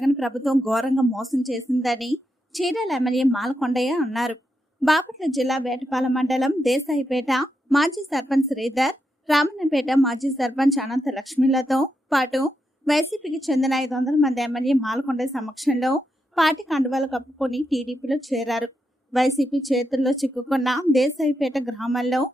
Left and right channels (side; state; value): both; normal; correlation 0.84